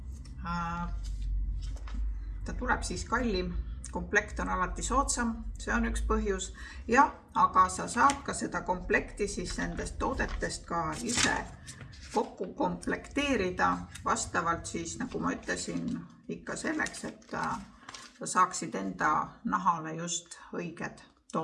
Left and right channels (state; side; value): identical; both; correlation 1.00